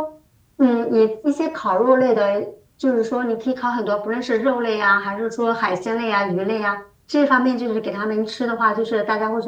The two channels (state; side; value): identical; both; correlation 1.00